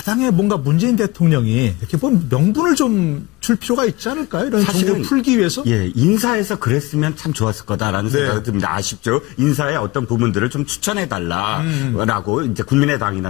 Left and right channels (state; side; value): quieter; right; 21.5 dB